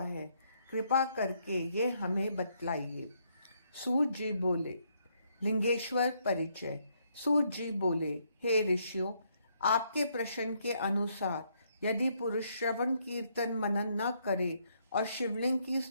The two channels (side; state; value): both; inverted; correlation -0.73